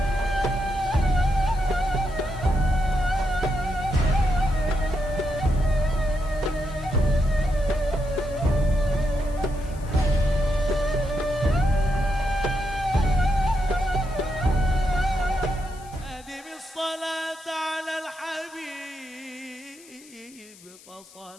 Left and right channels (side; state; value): left; noise; hiss, 22 dB below the sound